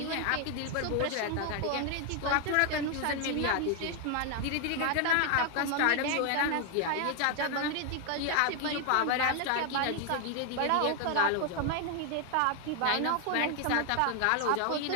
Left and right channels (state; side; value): different; both; correlation 0.01